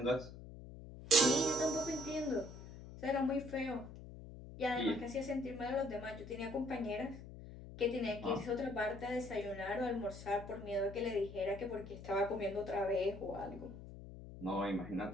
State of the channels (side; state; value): left; noise; hum, 13 dB below the sound